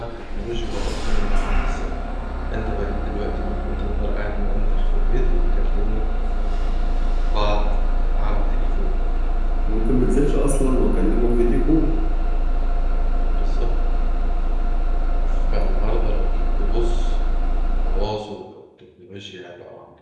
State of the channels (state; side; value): identical; both; correlation 1.00